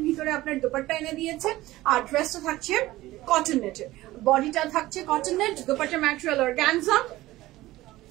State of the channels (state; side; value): quieter; left; 17.2 dB